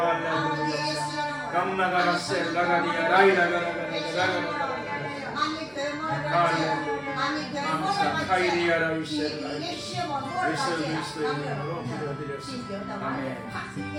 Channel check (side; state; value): both; identical; correlation 1.00